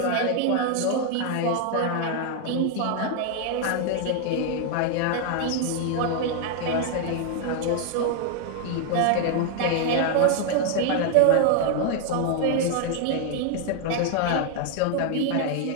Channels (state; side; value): different; both; correlation 0.00